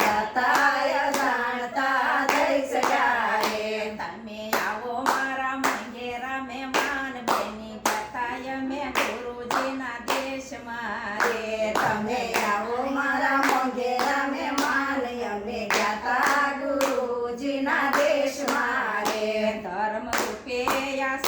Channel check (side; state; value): both; identical; correlation 1.00